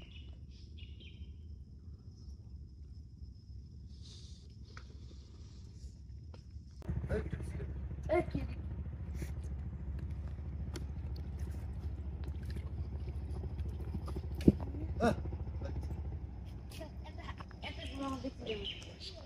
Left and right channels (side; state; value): both; identical; correlation 1.00